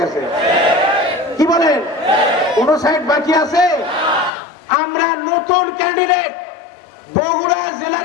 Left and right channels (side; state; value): right; drops out; at 4.3 s